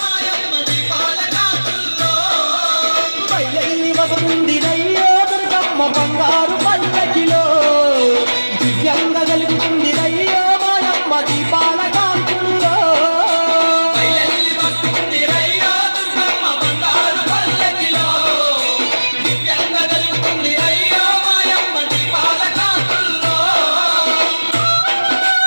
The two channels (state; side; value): inverted; both; correlation -1.00